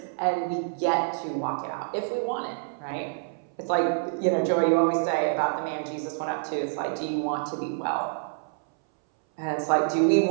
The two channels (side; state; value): left; silent; 60 dB below the other